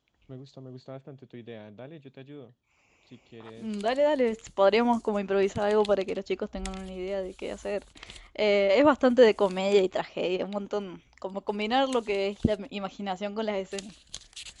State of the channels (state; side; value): identical; both; correlation 1.00